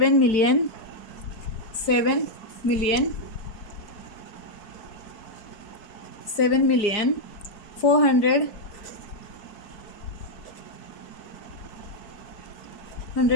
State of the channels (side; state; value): right; late; 4.6 ms